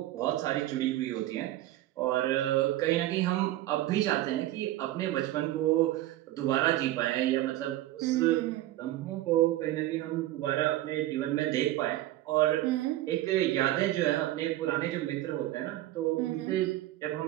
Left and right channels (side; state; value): left; quieter; 15.2 dB